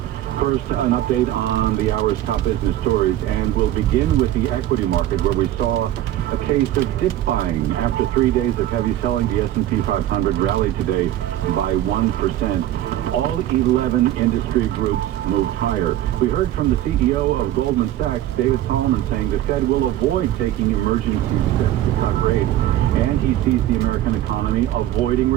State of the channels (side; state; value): left; quieter; 13.2 dB